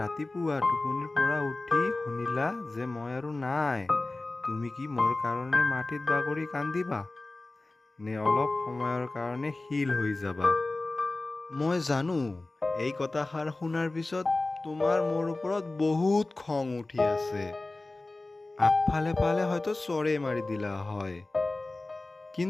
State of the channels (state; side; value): quieter; right; 3.0 dB